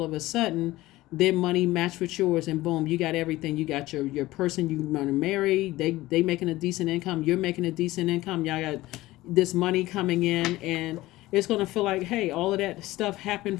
of a sudden their money matched with yours, and boom, you got everything. You got your person you want to marry. They making a decent income. You're making a decent income. Y'all got this money coming in, and it's going to feel like, hey, all of that stuff happened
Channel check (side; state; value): right; quieter; 17.7 dB